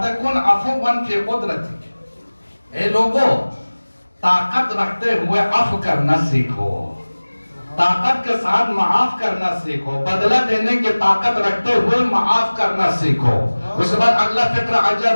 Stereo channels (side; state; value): both; inverted; correlation -1.00